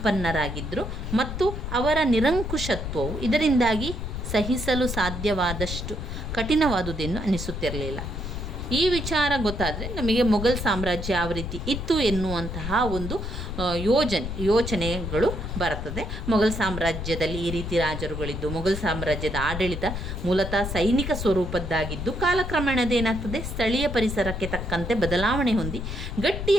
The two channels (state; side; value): noise; left; rumble, 5 dB below the sound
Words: ಮತ್ತು ಅವರ ನಿರಂಕುಶತ್ವವು ಇದರಿಂದಾಗಿ ಸಹಿಸಲು ಸಾಧ್ಯವಾದಷ್ಟು ಕಠಿಣವಾದುದೆಂದು ಅನಿಸುತ್ತಿರಲಿಲ್ಲ. ಈ ವಿಚಾರ ಗೊತ್ತಾದರೆ ನಮಗೆ ಮೊಘಲ್ ಸಾಮ್ರಾಜ್ಯ ಯಾವ ರೀತಿ ಇತ್ತು ಎನ್ನುವಂತಹ ಒಂದು ಯೋಚನೆಗಳು ಬರ್ತದೆ. ಮೊಘಲ್ ಸಾಮ್ರಾಜ್ಯದಲ್ಲಿ ಈ ರೀತಿ ರಾಜರುಗಳಿದ್ದು, ಮೊಘಲ್ ಸಾಮ್ರಾಜ್ಯದ ಆಡಳಿತ ಮೂಲತಃ ಸೈನಿಕ ಸ್ವರೂಪದ್ದಾಗಿದ್ದು, ಕಾಲಕ್ರಮೇಣದೇನಾಗ್ತದೆ, ಸ್ಥಳೀಯ ಪರಿಸರಕ್ಕೆ ತಕ್ಕಂತೆ ಬದಲಾವಣೆ ಹೊಂದಿ